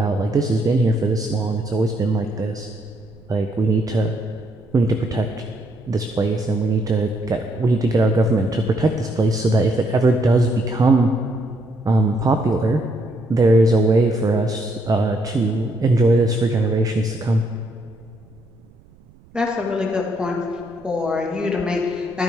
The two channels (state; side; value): noise; right; rumble, 27 dB below the sound